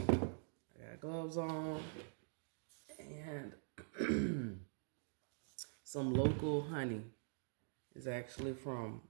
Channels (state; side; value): silent; left; digital silence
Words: got gloves on and some local honey. It's actually from